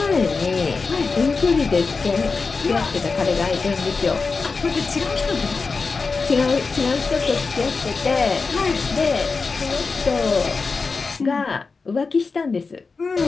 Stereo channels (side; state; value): right; quieter; 4.4 dB